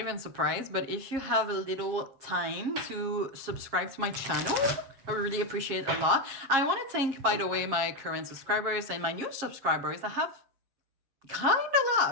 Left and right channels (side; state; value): left; late; 7.4 ms